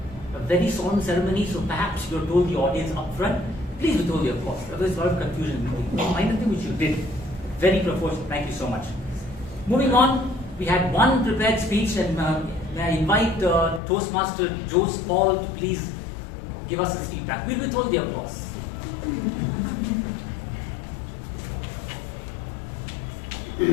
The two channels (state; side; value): drops out; right; at 13.8 s